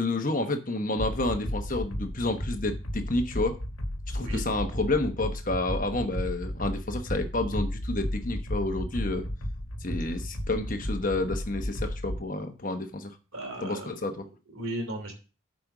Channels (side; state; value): both; normal; correlation 0.52